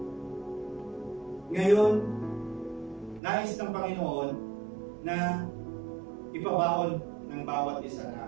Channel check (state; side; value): drops out; left; at 3.2 s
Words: Ngayon, nais ng Panginoon na ipabaon ng bawat isa na